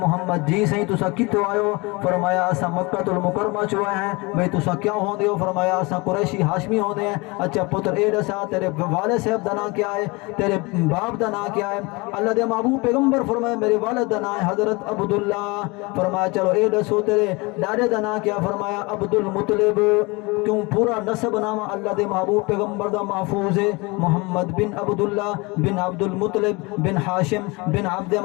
محمد. جی صحیح تسا کتوں آئے؟ فرمایا اسا مکہ المکرمہ چوئے ہیں. بھئی تسا کیا ہوندے ہو؟ فرمایا اسا قریشی ہاشمی ہوندے ہیں. اچھا پتر اے دسا تیرے والد صاحب دا نام کیا ہے؟ تیرے باپ دا نام کیا ہے؟ اللہ دے محبوب پیغمبر فرمایا میرے والد دا نام ہے حضرت عبداللہ. فرمایا چلو اے دسو تیرے ڈاڈے دا نام کیا؟ فرمایا عبد المطلب. کیوں پورا نسب نام اللہ دے محبوب پیغمبر دا محفوظ ہے. محمد بن عبداللہ بن عبد المطلب بن ہاشم بن عبد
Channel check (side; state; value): right; quieter; 25.8 dB